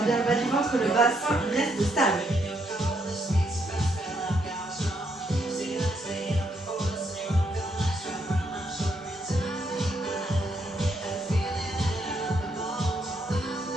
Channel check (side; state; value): both; normal; correlation 0.75